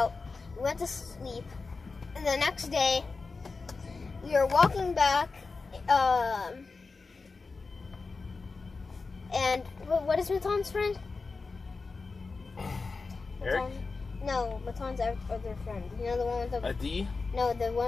we went to sleep, and the next day we were walking back. And what is Maton's friend? Eric? No, Maton's other friend. You know the one with the Adi? No, the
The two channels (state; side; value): quieter; right; 4.2 dB